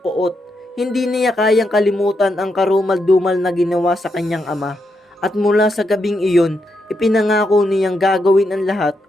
Hindi niya kayang kalimutan ang karumal-dumal na ginawa sa kanyang ama. At mula sa gabing iyon, ipinangako niyang gagawin ang lahat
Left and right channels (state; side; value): normal; both; correlation 0.82